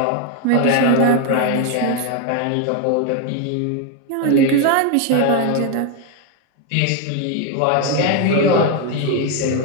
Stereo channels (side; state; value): both; different; correlation 0.01